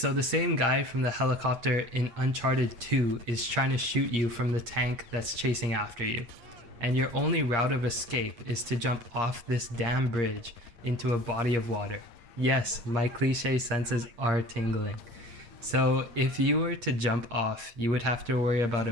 the same guy from the helicopter in Uncharted 2 is trying to shoot you from the tank that's chasing after you. And your only route of escape is to jump off this damn bridge into a body of water. Yes, my cliche senses are tingling. So if you were to jump off, you would have to worry about a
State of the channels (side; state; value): left; late; 8.5 ms